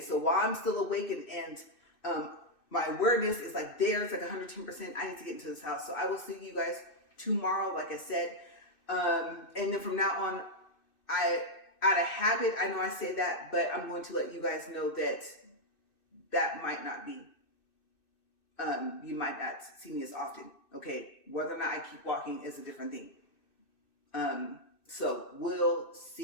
while I'm still awake and my awareness is like there, it's like 110%, I need to get into this house. So I will see you guys tomorrow, like I said. And then from now on, out of habit, I know I say that, but I'm going to let you guys know that that might not be, you might not see me as often, okay? Whether or not I keep walking is a different thing. So we'll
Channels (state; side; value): late; right; 2.6 ms